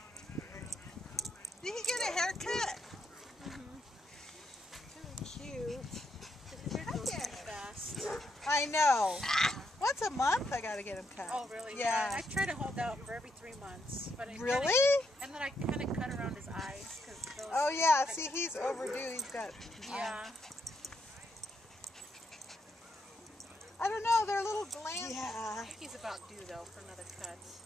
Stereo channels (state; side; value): normal; both; correlation 0.79